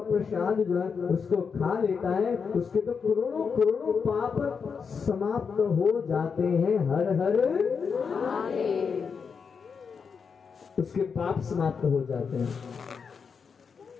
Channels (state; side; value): quieter; right; 5.9 dB